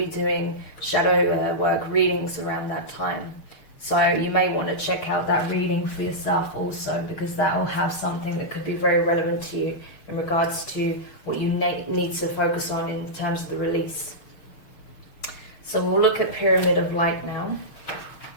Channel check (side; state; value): right; late; 6.5 ms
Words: doing shadow work readings around that time. So you may want to check out that reading for yourself also, because that will have something that could be very relevant to you in regards to what you need to focus on in terms of the release. So we'll look at Pyramid of Light now.